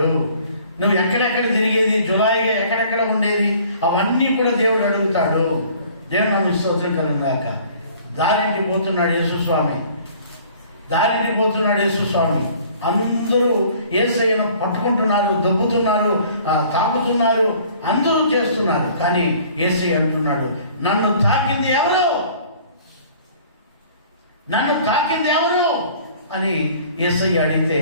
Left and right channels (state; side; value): inverted; both; correlation -0.52